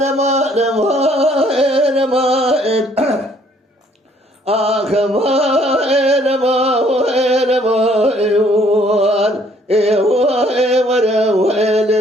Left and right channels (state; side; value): normal; both; correlation 0.63